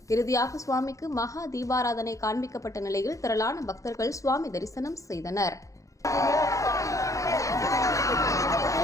இறுதியாக சுவாமிக்கு மகா தீபாராதனை காண்பிக்கப்பட்ட நிலையில் திரளான பக்தர்கள் சுவாமி தரிசனம் செய்தனர்.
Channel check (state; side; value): late; right; 0.16 ms